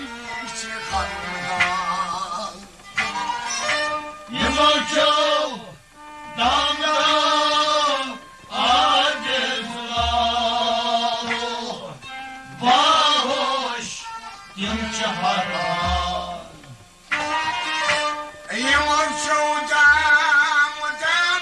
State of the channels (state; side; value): identical; both; correlation 1.00